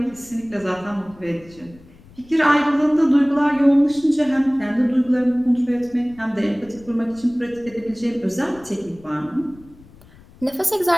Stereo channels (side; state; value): left; noise; rumble, 24 dB below the sound